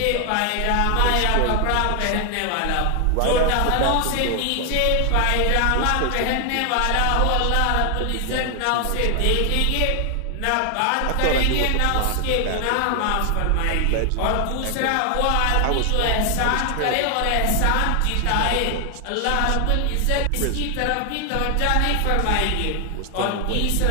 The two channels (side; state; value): both; different; correlation 0.00